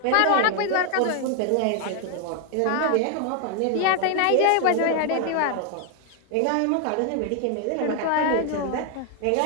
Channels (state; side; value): different; both; correlation 0.00